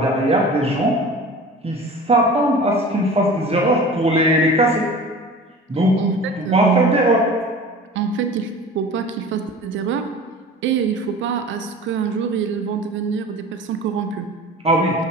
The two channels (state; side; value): normal; both; correlation 0.39